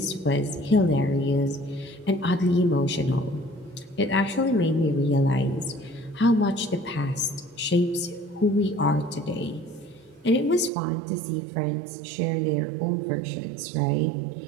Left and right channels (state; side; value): drops out; left; at 10.7 s